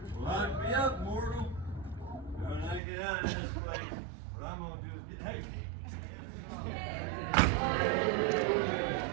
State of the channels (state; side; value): drops out; left; at 2.8 s